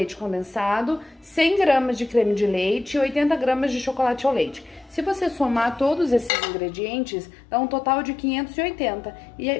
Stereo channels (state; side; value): drops out; right; at 6.3 s